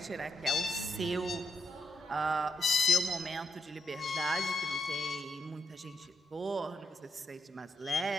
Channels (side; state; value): both; normal; correlation 0.82